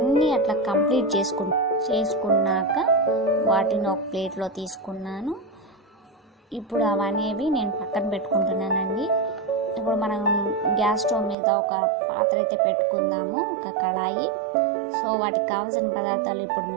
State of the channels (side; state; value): left; drops out; at 11.4 s